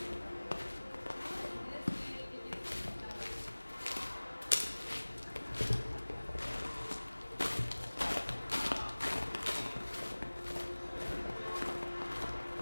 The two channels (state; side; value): inverted; both; correlation -1.00